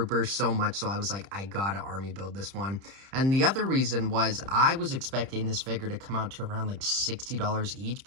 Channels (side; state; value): left; late; 30 ms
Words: so much, so I was like, I gotta army build this one. And the other reason was I was expecting this figure to come out to around like $60 each,